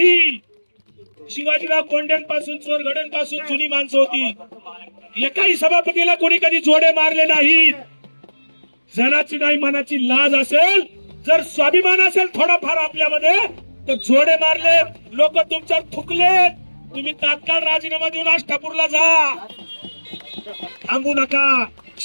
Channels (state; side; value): inverted; both; correlation -1.00